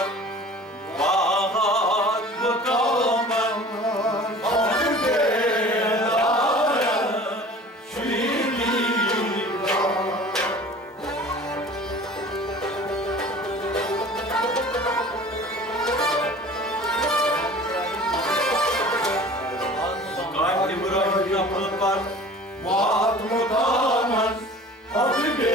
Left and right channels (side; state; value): both; normal; correlation 0.43